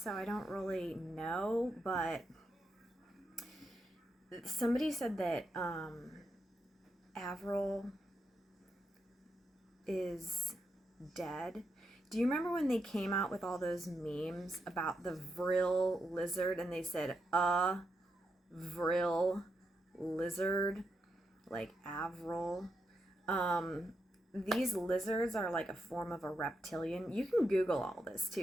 I don't really know, but somebody said that Avril is dead. Do you remember when they came out with all those memes about the vril lizard, and they said a vril lizard, like Avril? These lizards are like a form of a reptilian. You can Google all this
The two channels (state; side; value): normal; both; correlation 0.84